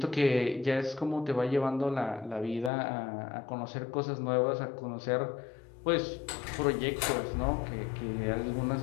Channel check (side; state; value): right; drops out; at 2.7 s